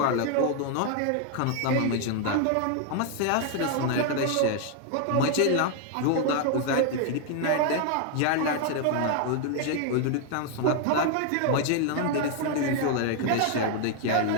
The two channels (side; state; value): both; different; correlation 0.00